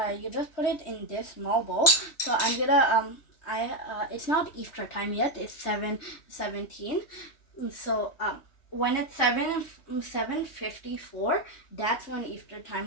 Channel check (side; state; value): right; late; 3.1 ms